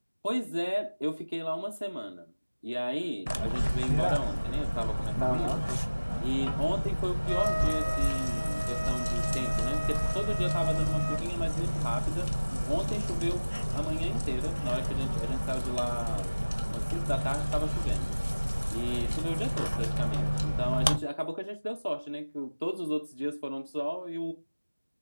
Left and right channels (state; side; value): inverted; both; correlation -1.00